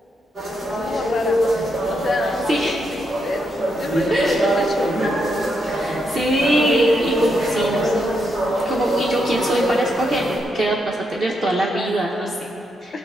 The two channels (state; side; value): normal; both; correlation 0.80